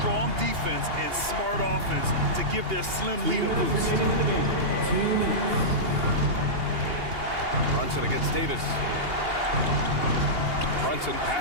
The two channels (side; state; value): left; late; 2.8 ms